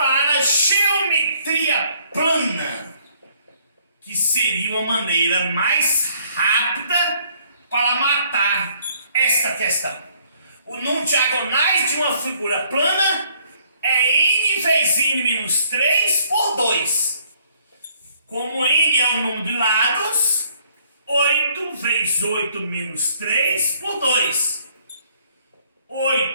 a geometria plana, que seria uma maneira mais rápida para matar esta questão. O número de diagonais de uma figura plana é n vezes n menos 3 por 2. Como n é o número de lados, 8 vezes 8 menos 3 por 2.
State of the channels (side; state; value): both; inverted; correlation -0.64